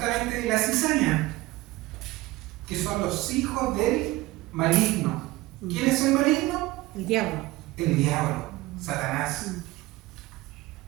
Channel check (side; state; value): left; quieter; 19.0 dB